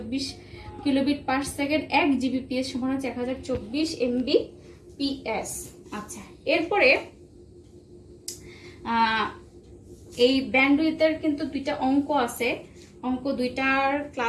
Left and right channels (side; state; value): both; identical; correlation 1.00